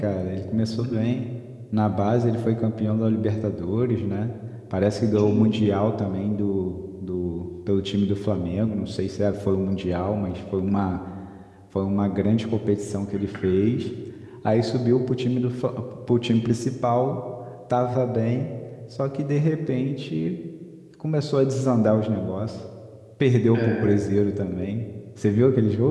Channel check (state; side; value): identical; both; correlation 1.00